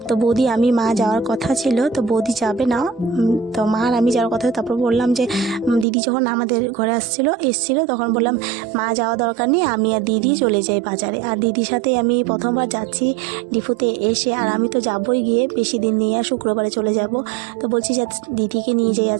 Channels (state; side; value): drops out; left; at 5.9 s